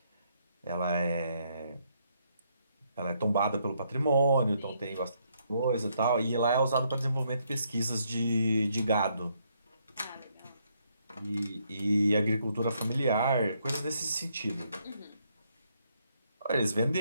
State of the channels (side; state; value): both; inverted; correlation -0.73